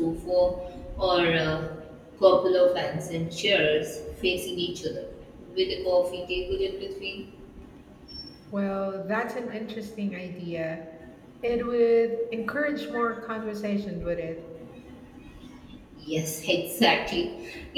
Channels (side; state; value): both; identical; correlation 1.00